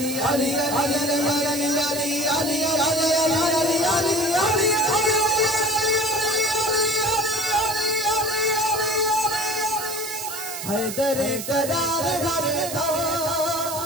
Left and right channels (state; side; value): noise; right; hiss, 7 dB below the sound